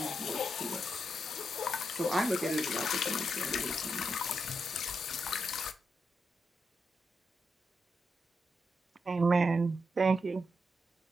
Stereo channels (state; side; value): normal; both; correlation 0.84